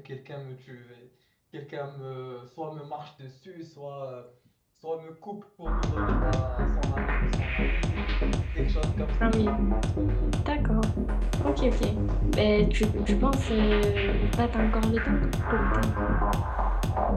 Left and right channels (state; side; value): identical; both; correlation 1.00